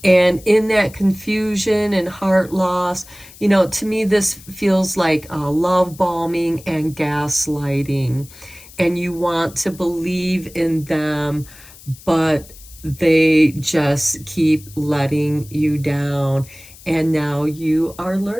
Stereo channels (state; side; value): noise; left; hiss, 21 dB below the sound